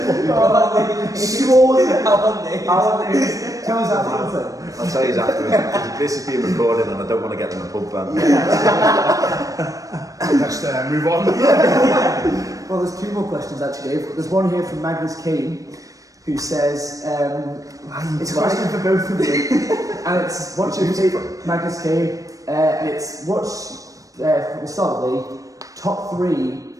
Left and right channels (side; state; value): left; late; 0.16 ms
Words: Straws? How are they? Tell us that. I'll tell you afterwards. This is being recorded, and I don't want to get them a pub ban. Let's move on. Well, there's 2 more questions actually, Dave. There's one here from Magnus Kane, who says, it's a question for both of you, and it's what's your favourite, Magnus Kane, and it's we'll start with the top 3